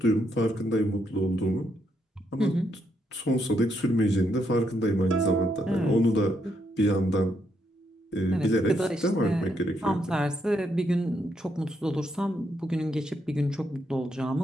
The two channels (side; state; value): both; normal; correlation 0.77